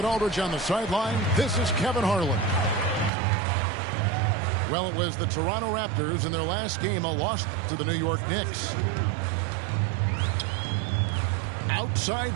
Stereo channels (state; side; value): drops out; left; at 3.1 s